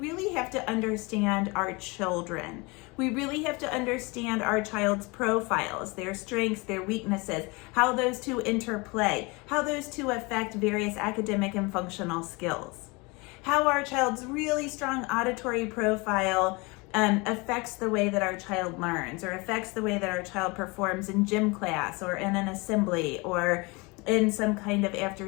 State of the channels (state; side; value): quieter; right; 26.7 dB